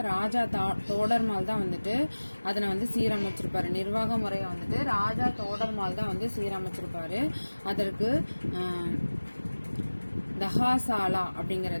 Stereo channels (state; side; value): inverted; both; correlation -1.00